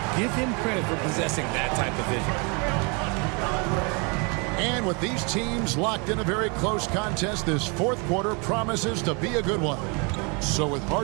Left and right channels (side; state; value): left; quieter; 32.3 dB